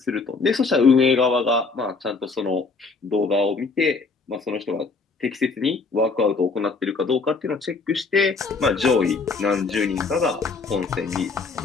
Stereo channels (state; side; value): quieter; right; 4.2 dB